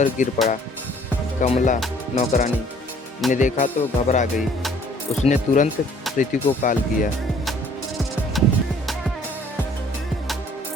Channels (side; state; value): both; normal; correlation 0.57